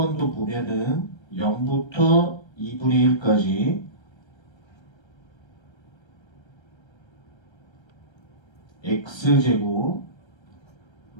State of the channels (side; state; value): right; late; 1.3 ms